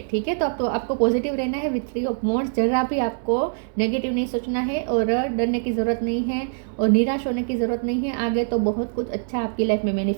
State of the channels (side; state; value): left; silent; digital silence